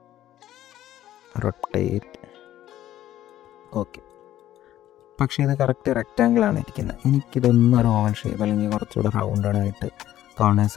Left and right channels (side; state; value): right; quieter; 12.9 dB